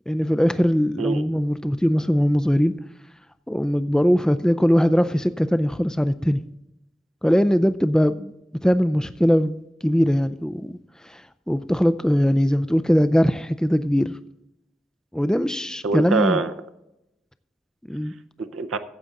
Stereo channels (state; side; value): normal; both; correlation 0.96